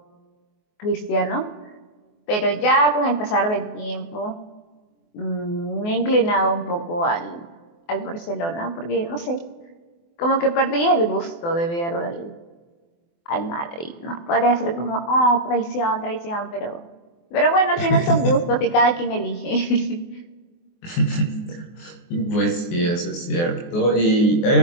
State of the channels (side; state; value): right; late; 24 ms